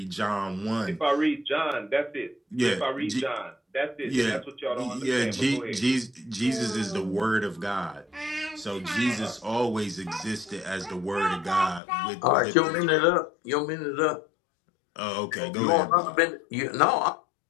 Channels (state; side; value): drops out; right; at 11.8 s